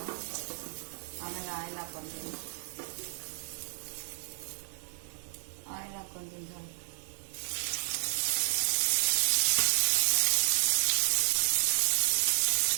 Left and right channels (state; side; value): silent; left; 57 dB below the other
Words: ಆಮೇಲೆ ಆಯಿಲ್ ಹಾಕ್ಕೊತೀನಿ